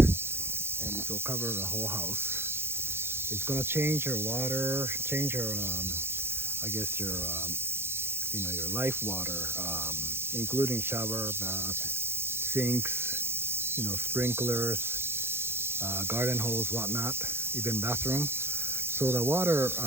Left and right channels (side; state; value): left; late; 0.11 ms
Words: it will cover the whole house. It's gonna change your water, change your, I guess your, your life water, including shower, bath, sinks, sprinklers, garden hose, whatnot, even bathroom. So the water,